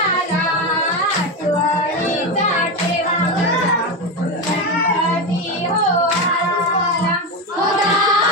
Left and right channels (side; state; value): both; normal; correlation 0.14